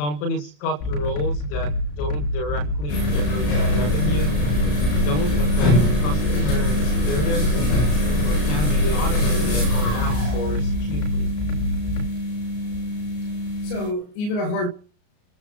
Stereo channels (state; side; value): late; right; 34 ms